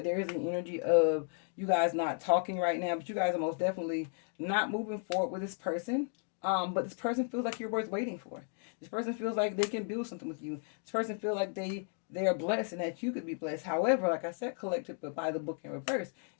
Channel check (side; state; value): right; silent; 55 dB below the other